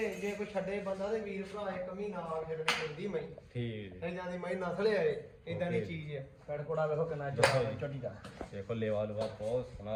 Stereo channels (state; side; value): identical; both; correlation 1.00